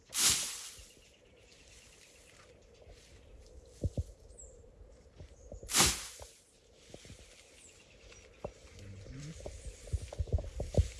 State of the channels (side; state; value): both; identical; correlation 1.00